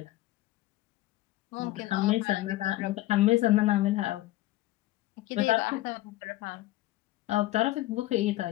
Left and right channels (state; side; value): quieter; right; 16.6 dB